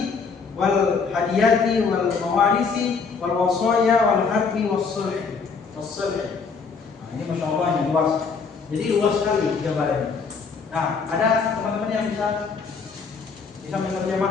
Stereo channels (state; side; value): quieter; right; 5.1 dB